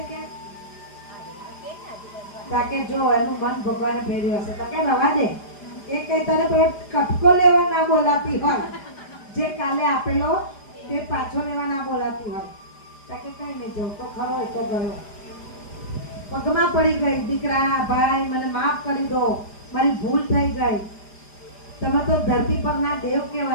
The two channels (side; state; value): right; late; 4.9 ms